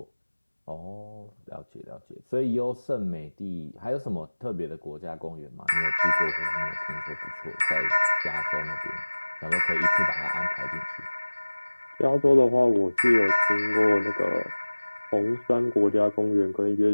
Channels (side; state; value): both; inverted; correlation -1.00